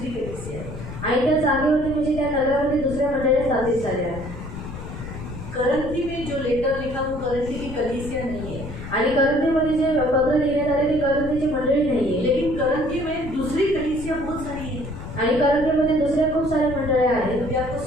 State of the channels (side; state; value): left; noise; rumble, 10 dB below the sound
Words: कलीसिया है। आणि त्या जागेवरती म्हणजे त्या नगरावरती दुसऱ्या मंडळी स्थापित झाल्या. करंथी में जो लेटर लिखा वो करंथी की कलीसिया नहीं है, आणि करंथीमध्ये जे पत्र लिहिण्यात आले ते करंथीची मंडळी नाहीये. लेकिन करंथी में दूसरी कलीसिया बहुत सारी है। आणि करंथीमध्ये दुसऱ्या खूप साऱ्या मंडळ्या आहेत. अभी आपको